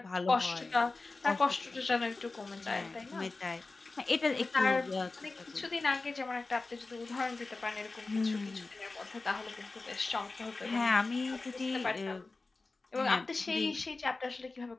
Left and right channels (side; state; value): right; quieter; 3.6 dB